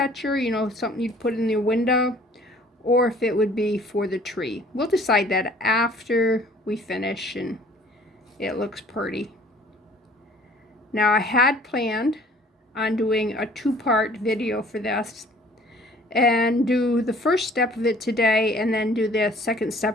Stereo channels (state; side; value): normal; both; correlation 0.54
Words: you know, something you'd put in your window, or if it would be for the tree. We'll decide that after we finish and it looks pretty. Now I had planned on doing a two-part video for this and do the first step of it today and then do the second